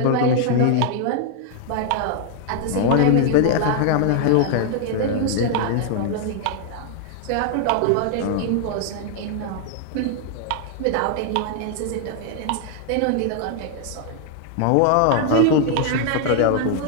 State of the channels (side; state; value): both; different; correlation 0.00